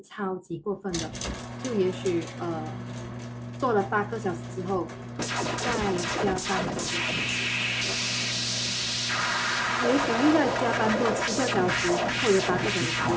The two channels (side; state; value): both; identical; correlation 1.00